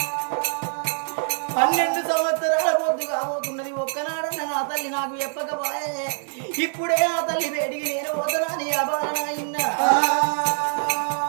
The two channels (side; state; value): left; silent; digital silence